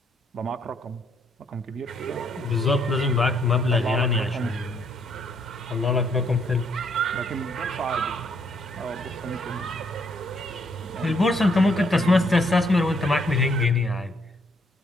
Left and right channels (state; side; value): normal; both; correlation 0.70